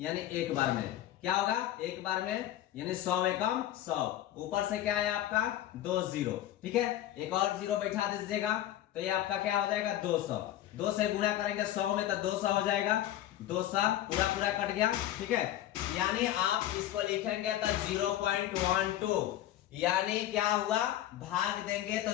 एक बार में। क्या होगा? एक बार में, यानी 100 एकम 100, ऊपर से क्या है आपका? 2 0। ठीक है, एक और 0 बैठा दीजिएगा तो ये आपका क्या हो जाएगा? 200। 2 से गुणा करेंगे 100 में तो 200 हो जाएगा, 200 पूरा कट गया। ठीक है, यानी आप इसको लिखेंगे तो 0.12, यानी क्या हुआ? भाग देंगे तो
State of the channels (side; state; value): right; quieter; 13.1 dB